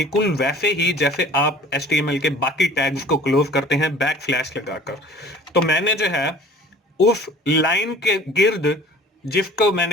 वैसे ही जैसे आप HTML के बाकी टैग्स को क्लोज करते हैं बैक स्लैश लगाकर। तो मैंने जो है उस लाइन के गिर्द जिसको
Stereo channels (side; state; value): both; normal; correlation 0.47